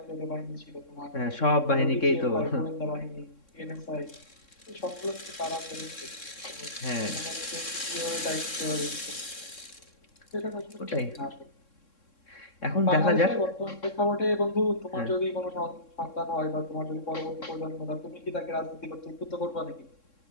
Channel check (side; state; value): right; late; 3.6 ms